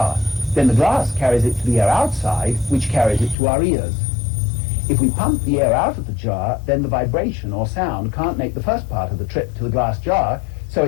Then the glass carries it to the air outside, which carries it to our ears. If we pump the air out of the jar, then the vibration or sound can't make the first part of the trip to the glass jar, so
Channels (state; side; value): drops out; right; at 3.4 s